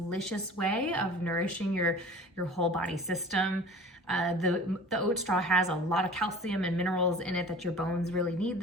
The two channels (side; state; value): both; normal; correlation 0.43